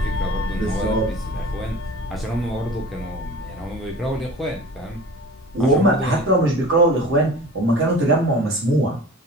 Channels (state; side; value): normal; both; correlation 0.40